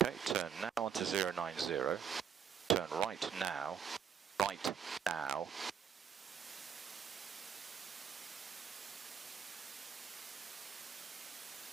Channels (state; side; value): quieter; left; 7.7 dB